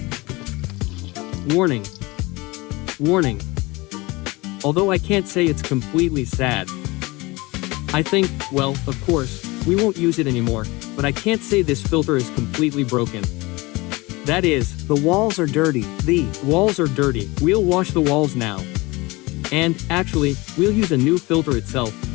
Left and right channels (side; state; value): right; quieter; 23.1 dB